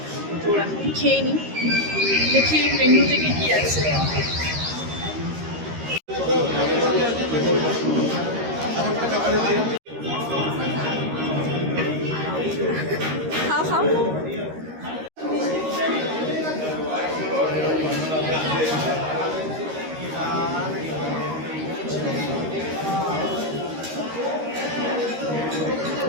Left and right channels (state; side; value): late; left; 13 ms